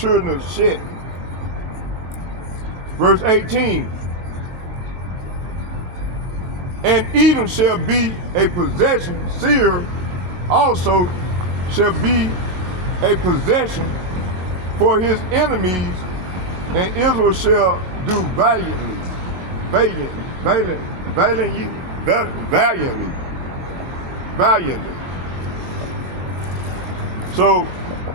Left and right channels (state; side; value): late; left; 23 ms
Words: of Shet. Verse 18. And Edom shall be a possession, Seir also shall be a possession for his enemies, and Israel shall do valiantly. So